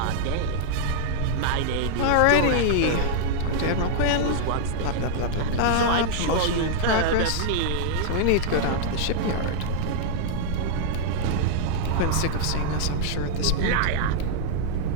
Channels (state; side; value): different; both; correlation -0.01